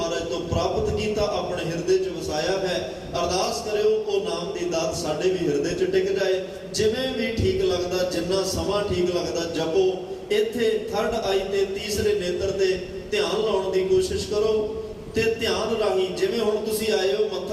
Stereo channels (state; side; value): identical; both; correlation 1.00